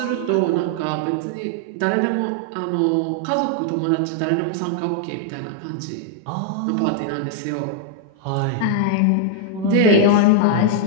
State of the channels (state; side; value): different; both; correlation 0.00